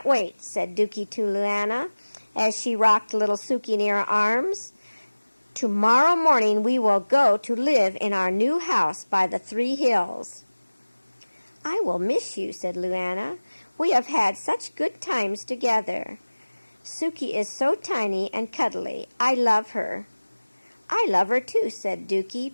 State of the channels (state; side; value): inverted; both; correlation -1.00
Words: wait," said Dookie to Luana as she rocked little Suki in her arms. "Tomorrow morning we will go to live in our new house by the 3 hills." "I will miss you," said Luana. "We have had such good times together. Suki is so tiny and cuddly. I love her." "I love her too," said